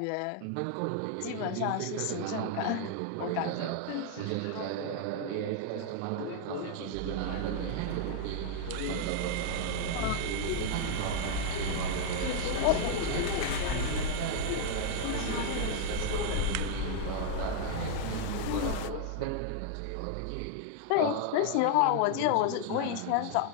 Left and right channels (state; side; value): different; both; correlation 0.00